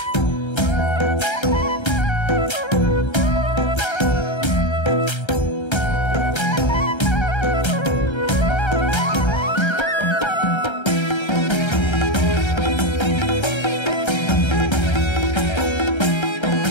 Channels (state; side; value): late; right; 1.3 ms